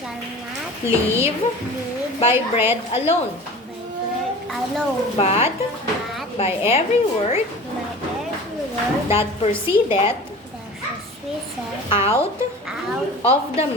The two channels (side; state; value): both; normal; correlation 0.38